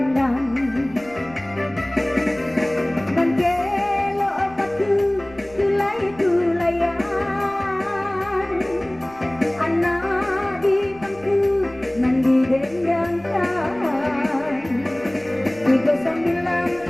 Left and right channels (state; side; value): noise; right; rumble, 23 dB below the sound